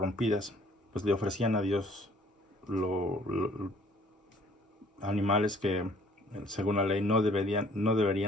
pues le ofrecían a Dios animales que según la ley no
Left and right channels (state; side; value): normal; both; correlation 0.59